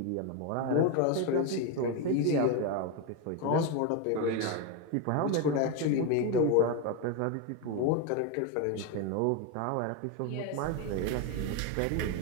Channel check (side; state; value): both; different; correlation 0.02